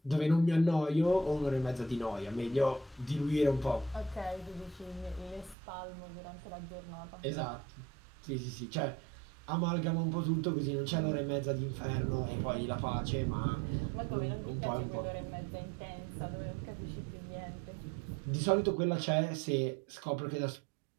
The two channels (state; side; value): drops out; left; at 5.6 s